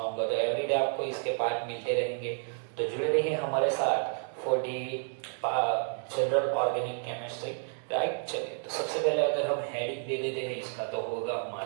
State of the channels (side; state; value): left; silent; 57 dB below the other